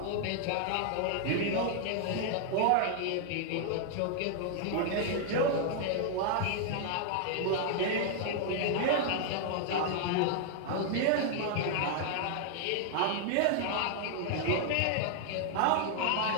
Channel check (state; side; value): different; both; correlation 0.00